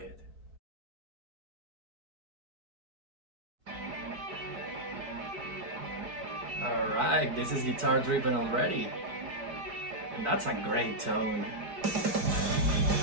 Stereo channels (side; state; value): left; late; 4.6 ms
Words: Alright, this is guitar driven already. And that's a great tone.